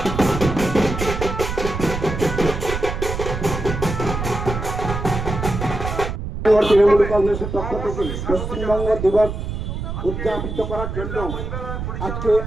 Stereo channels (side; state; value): right; noise; rumble, 5 dB below the sound